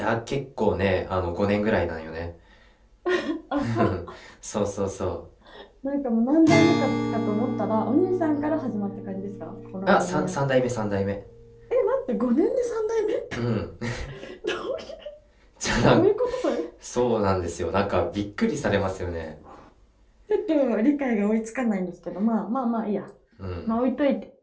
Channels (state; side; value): identical; both; correlation 1.00